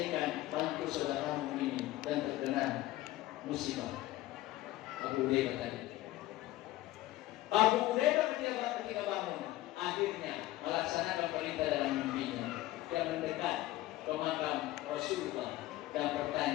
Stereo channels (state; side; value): quieter; right; 16.4 dB